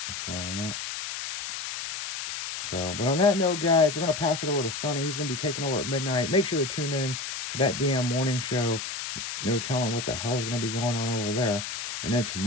So, yeah. So, but on that note, guys, we're going to pass it over to Sonny. He's going to be taking over at midnight. Make sure to tune in to that damn morning show. No telling what the hell is going to be going on over there. And then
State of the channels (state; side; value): noise; left; hiss, 6 dB below the sound